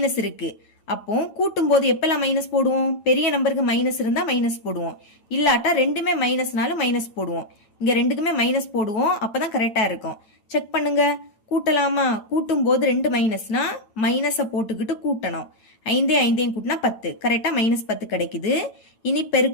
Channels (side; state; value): right; late; 9.0 ms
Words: இருக்கு. அப்போ கூட்டும் போது எப்பெல்லாம் மைனஸ் போடுவோம்? பெரிய நம்பருக்கு மைனஸ் இருந்தா மைனஸ் போடுவோம். இல்லாட்டா ரெண்டுமே மைனஸ்னாலும் மைனஸ் போடுவோம். இங்க ரெண்டுக்குமே மைனஸ் போடுவோம். அப்பதான் கரெக்டா இருக்கும். செக் பண்ணுங்க. கூட்டலாமா? கூட்டும் போது 2 மைனஸ்னா மைனஸ போட்டுக்கிட்டு கூட்டணும். 5ஐயும் கூட்டினா 10. கரெக்டா மைனஸ் 10 கிடைக்குது. இனி